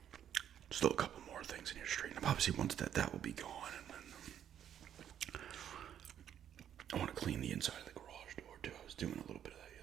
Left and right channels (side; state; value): left; quieter; 9.8 dB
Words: still a couple more things in your street. And obviously once that will be gone, and then I want to clean the inside of the garage door too. I was doing a little bit of that